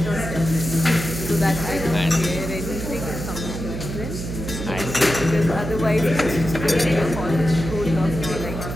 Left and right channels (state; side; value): noise; right; hum, 7 dB below the sound